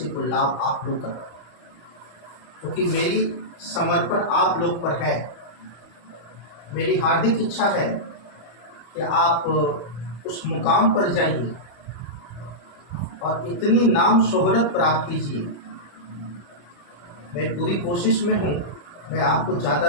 को लाभ आप लोग कर, क्योंकि मेरी समर्पण आप लोग पर है। मेरी हार्दिक इच्छा है कि आप उस मुकाम पर जाइए और इतनी नाम शोहरत प्राप्त कीजिए। मैं पूरी कोशिश में हूँ, मैं आपको ज़्यादा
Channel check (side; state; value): right; late; 34 ms